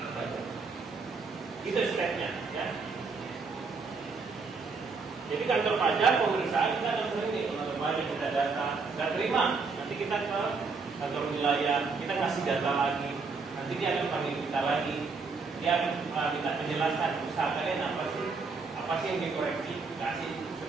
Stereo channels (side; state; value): left; quieter; 4.5 dB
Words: pajak. Itu stepnya, ya. Jadi kantor pajak pemeriksaan kita akan sering nih, kantor pajak kita data, nggak terima. Nanti kita ke kantor wilayah, kita kasih data lagi. Nanti dia akan panggil kita lagi. Dia akan minta penjelasan usaha kalian apa sih yang dikoreksi, kasih